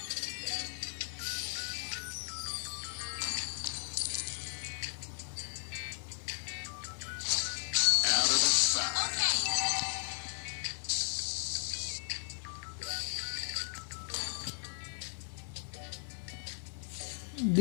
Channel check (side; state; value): right; silent; digital silence